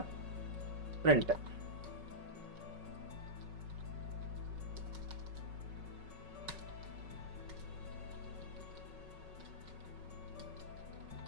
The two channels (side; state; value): left; late; 5.4 ms